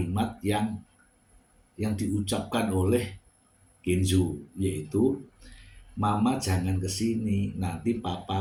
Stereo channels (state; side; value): identical; both; correlation 1.00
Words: yang diucapkan oleh Kenzo, yaitu mama jangan kesini, nanti papa